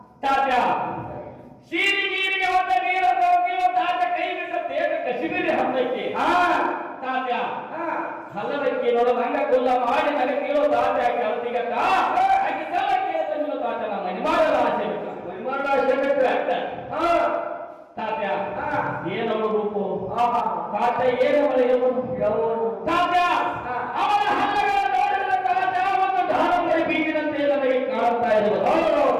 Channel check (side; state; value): both; identical; correlation 1.00